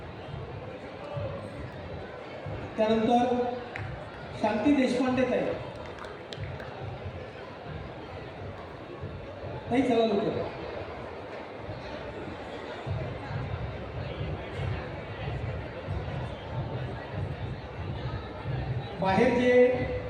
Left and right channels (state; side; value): identical; both; correlation 1.00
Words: त्यानंतर शांती देशपांडे ताई, ताई चला लवकर। बाहेर जे